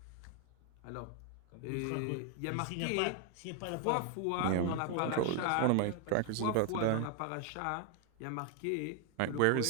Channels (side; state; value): both; different; correlation 0.00